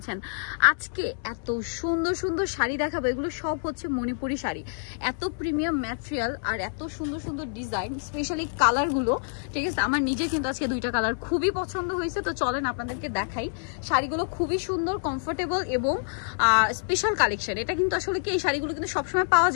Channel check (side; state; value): right; silent; 60 dB below the other